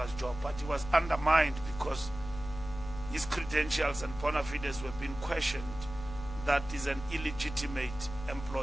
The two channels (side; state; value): left; noise; hum, 11 dB below the sound